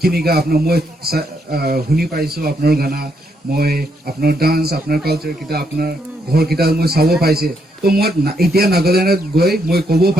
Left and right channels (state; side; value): normal; both; correlation 0.76